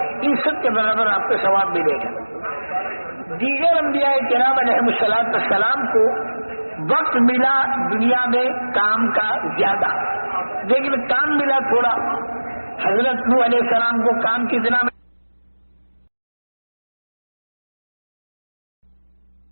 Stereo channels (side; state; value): both; inverted; correlation -1.00